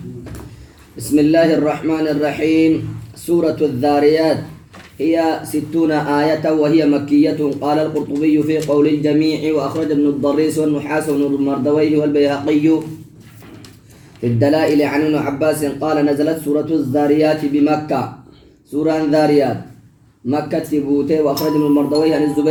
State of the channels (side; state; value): both; identical; correlation 1.00